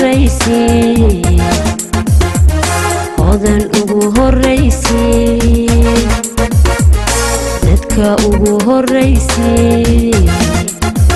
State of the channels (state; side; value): identical; both; correlation 1.00